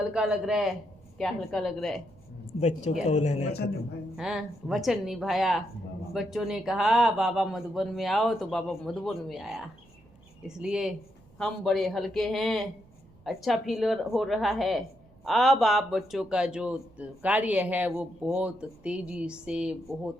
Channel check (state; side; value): noise; right; rumble, 28 dB below the sound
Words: लग रहा है। क्या हल्का लग रहा है? बच्चों का उल्हाना खत्म। हाँ, वचन निभाया। बच्चों ने कहा बाबा मधुबन में आओ, तो बाबा मधुबन में आया। इसलिए हम बड़े हल्के हैं, अच्छा फील हो रहा है। अब आप बच्चों का जो कार्य है वो बहुत तेजी से,